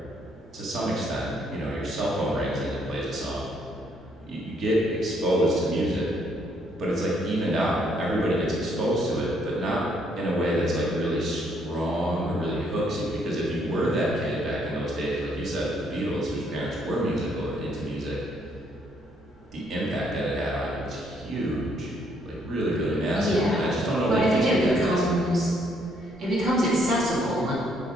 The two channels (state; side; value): normal; both; correlation 0.70